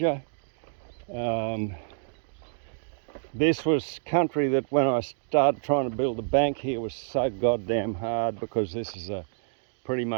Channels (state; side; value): silent; left; digital silence